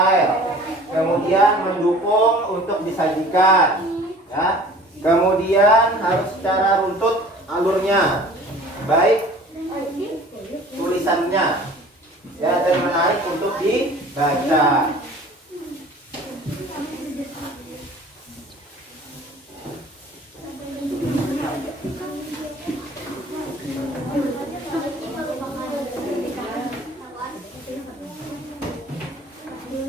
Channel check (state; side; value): normal; both; correlation 0.47